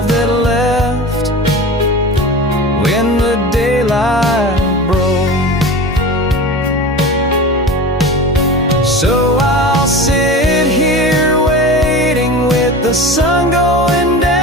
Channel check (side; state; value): both; normal; correlation 0.32